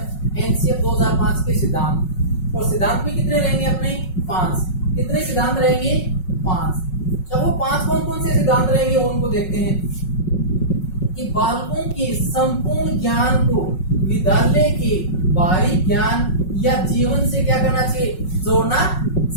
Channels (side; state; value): right; late; 5.4 ms